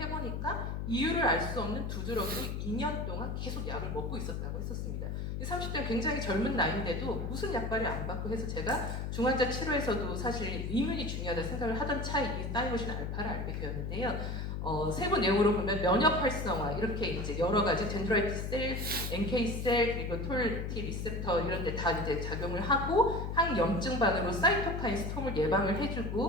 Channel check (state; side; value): noise; left; hum, 3 dB below the sound